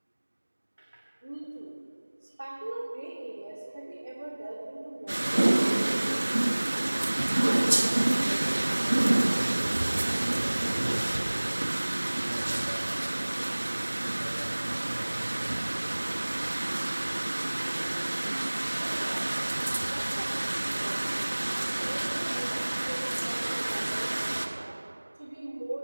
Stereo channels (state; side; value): inverted; both; correlation -1.00